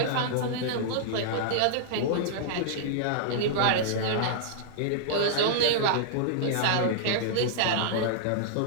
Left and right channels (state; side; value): different; both; correlation -0.02